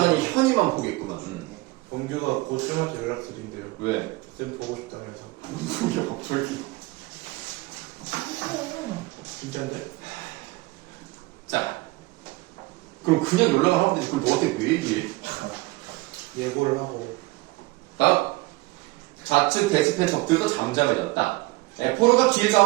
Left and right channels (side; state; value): left; quieter; 22.2 dB